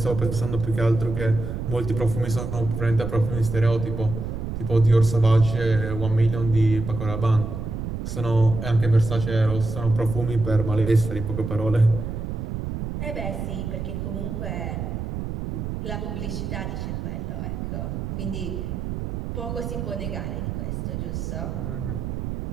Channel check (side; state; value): right; noise; rumble, 5 dB below the sound